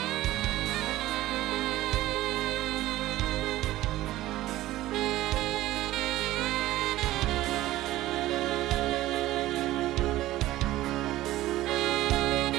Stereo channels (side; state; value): left; quieter; 15.8 dB